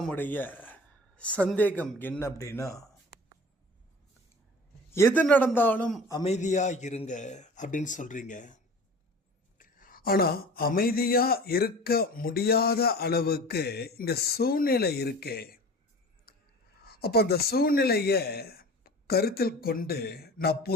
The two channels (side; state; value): both; normal; correlation 0.40